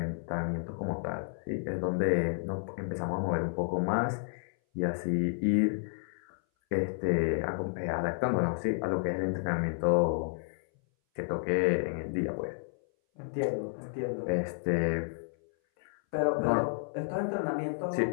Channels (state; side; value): silent; right; 57 dB below the other